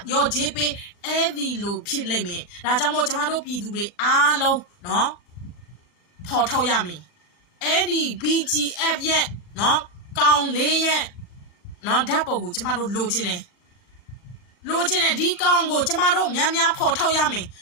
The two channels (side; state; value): right; late; 39 ms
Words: ရောချေးပေးအဲ့ဒီလိုဖြစ်လိမ့်မယ်ဒါကြောင့်မို့ကျမတို့ပြည်သူတွေအားလုံးနော်ဖော်ထုတ်ရမယ်အဲ့ဒီ BGF ရဲ့နော်ကောင်လေးရဲ့နော်ဓာတ်ပုံကိုကျမတို့လိုချင်တယ်ဒီကောင်ကိုကျမတို့များဖော်ထုတ်ရမယ်